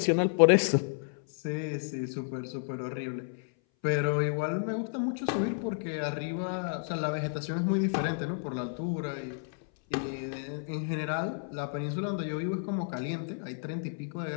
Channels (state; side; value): silent; right; 57 dB below the other